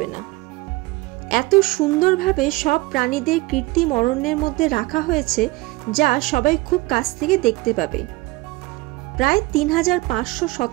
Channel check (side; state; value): left; quieter; 21.9 dB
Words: না। এত সুন্দরভাবে সব প্রাণীদের কৃত্রিম অরণ্যের মধ্যে রাখা হয়েছে যা সবাই খুব কাছ থেকে দেখতে পাবে। প্রায়